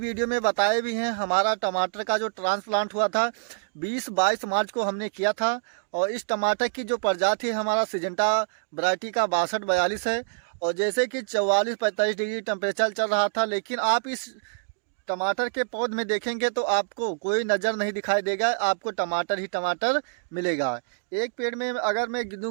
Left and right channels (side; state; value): left; silent; digital silence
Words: में बताए भी हैं, हमारा टमाटर का जो ट्रांसप्लांट हुआ था 20-22 मार्च को हमने किया था। और इस टमाटर की जो प्रजाति है हमारा सिजेंटा वैरायटी का 6242 है। और जैसे कि 44-45 डिग्री टेम्परेचर चल रहा था, लेकिन आप इस टमाटर के पौध में देखेंगे तो आपको कोई नज़र नहीं दिखाई देगा, आपको टमाटर ही टमाटर मिलेगा। एक पेड़ में अगर मैं